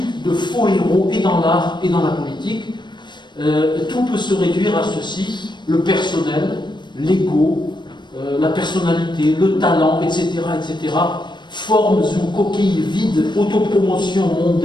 de faux héros et dans l'art et dans la politique. Tout peut se réduire à ceci: le personnel, l'ego, la personnalité, le talent, etc., etc., formes ou coquilles vides, autopromotion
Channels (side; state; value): right; late; 0.22 ms